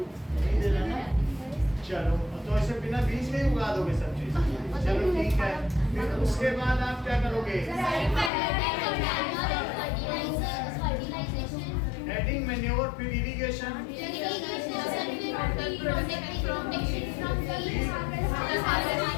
नहीं दे रहा ना। चलो, तो ऐसे बिना बीज में उगा दोगे सब चीज। चलो ठीक है, फिर उसके बाद आप क्या करोगे? एडिंग मैन्योर, फिर इरिगेशन,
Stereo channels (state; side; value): drops out; right; at 8.3 s